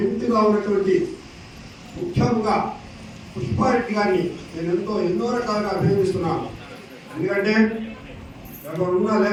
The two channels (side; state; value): both; identical; correlation 1.00